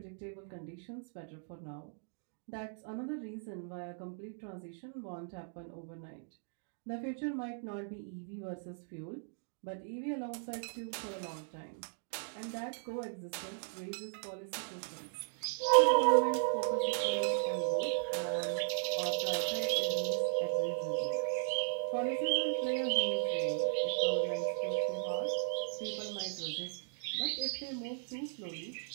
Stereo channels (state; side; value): silent; left; digital silence